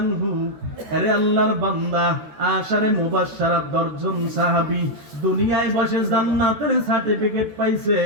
আনহু, আরে আল্লাহর বান্দা, আশারে মুবাশশারাত 10 জন সাহাবী দুনিয়ায় বসে জান্নাতের সার্টিফিকেট পাইছে,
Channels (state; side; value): late; left; 13 ms